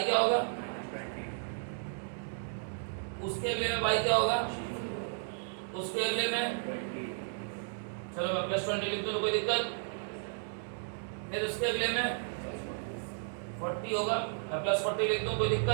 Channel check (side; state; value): left; silent; digital silence